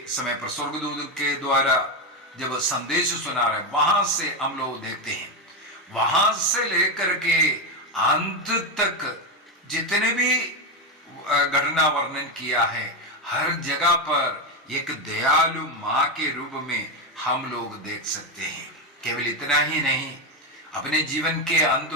समय पर स्वर्गदूत के द्वारा जब संदेश सुना रहे, वहां से हम लोग देखते हैं, वहां से लेकर के अंत तक जितने भी घटना वर्णन किया है, हर जगह पर एक दयालु माँ के रूप में हम लोग देख सकते हैं। केवल इतना ही नहीं, अपने जीवन के अंत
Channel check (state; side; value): normal; both; correlation 0.10